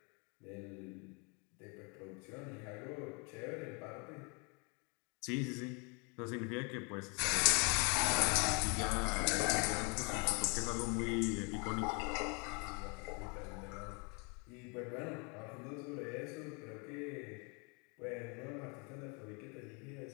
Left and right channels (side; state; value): right; quieter; 33.1 dB